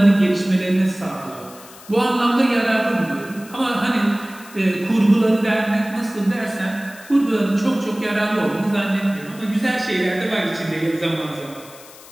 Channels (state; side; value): noise; left; hiss, 20 dB below the sound